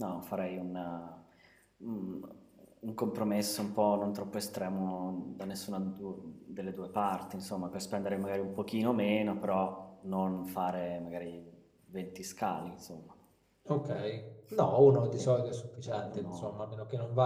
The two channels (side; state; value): both; identical; correlation 1.00